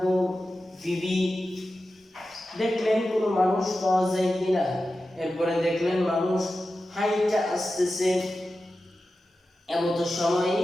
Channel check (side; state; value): both; normal; correlation 0.93